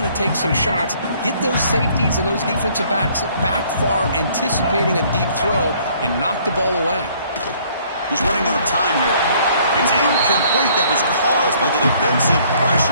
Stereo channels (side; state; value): both; inverted; correlation -0.61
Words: to take some shots. Get those safeties and those defensive backs back far, anticipating a deep throw, and knock the ball away. He's running out of time here. It's incomplete. That was caused by the defensive